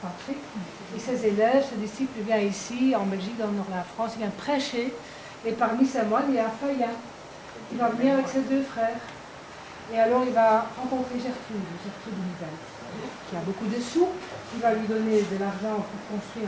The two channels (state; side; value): identical; both; correlation 1.00